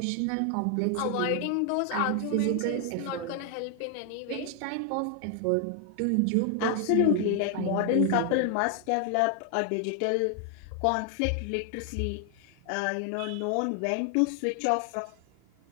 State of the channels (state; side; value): different; both; correlation 0.00